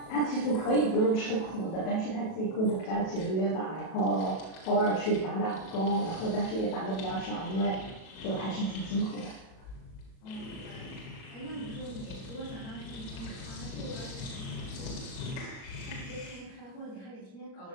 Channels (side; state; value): right; late; 37 ms